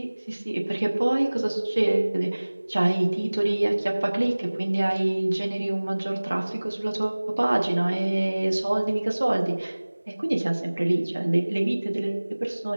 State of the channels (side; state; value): both; inverted; correlation -1.00